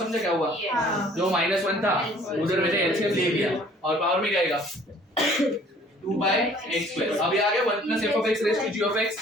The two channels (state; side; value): normal; both; correlation 0.55